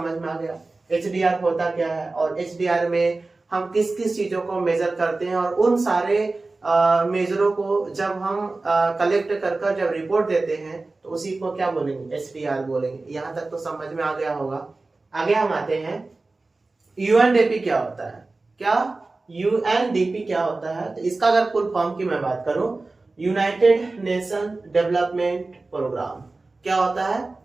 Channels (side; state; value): left; quieter; 3.4 dB